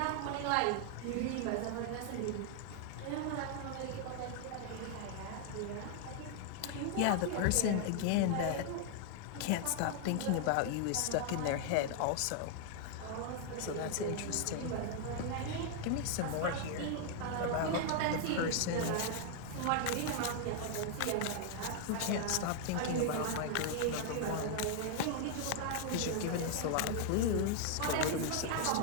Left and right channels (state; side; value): different; both; correlation 0.00